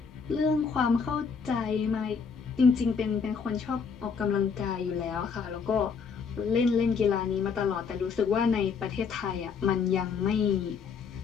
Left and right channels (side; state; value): right; quieter; 5.8 dB